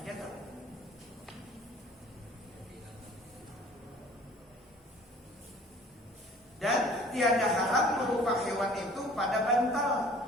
tuh? tiada haram berupa hewan itu pada bantal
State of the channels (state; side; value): normal; both; correlation 0.50